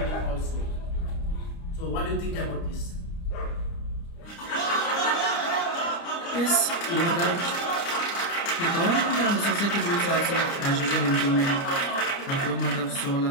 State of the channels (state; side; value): late; right; 29 ms